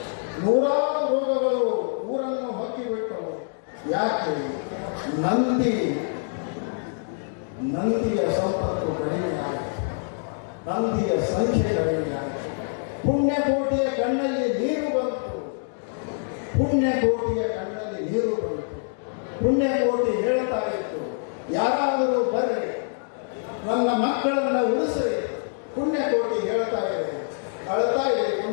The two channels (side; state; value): right; silent; digital silence